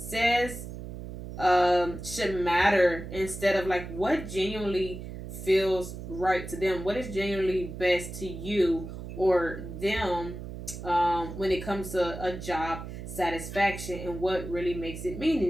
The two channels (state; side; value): noise; right; hum, 9 dB below the sound